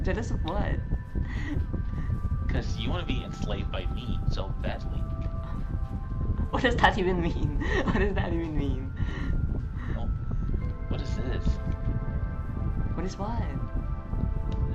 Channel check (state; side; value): identical; both; correlation 1.00